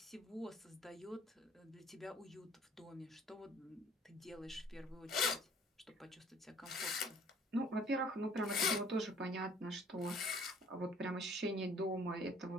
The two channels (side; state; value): both; normal; correlation 0.55